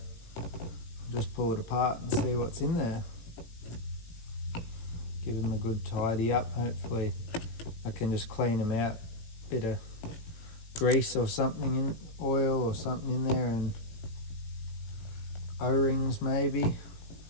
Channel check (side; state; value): right; late; 18 ms